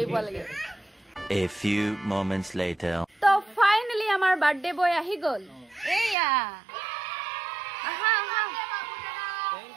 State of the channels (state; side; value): drops out; left; at 6.2 s